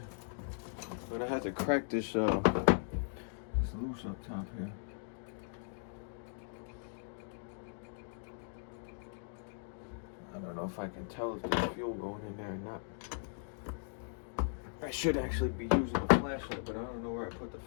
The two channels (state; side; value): silent; right; digital silence